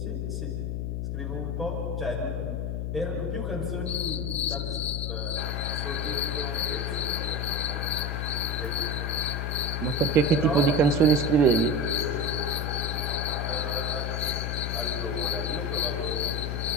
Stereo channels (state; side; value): noise; left; hum, 1 dB below the sound